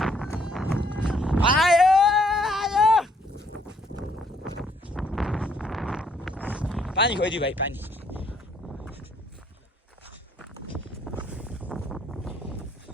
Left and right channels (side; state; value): both; normal; correlation 0.67